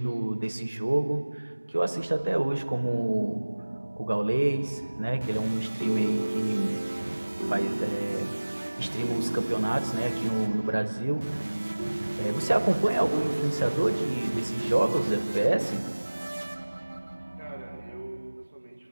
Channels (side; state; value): both; inverted; correlation -1.00